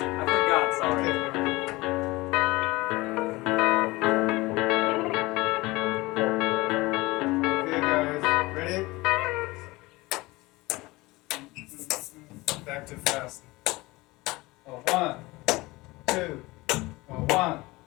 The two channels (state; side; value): quieter; right; 21.4 dB